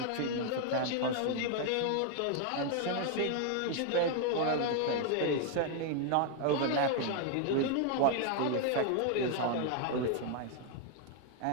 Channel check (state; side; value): different; both; correlation 0.00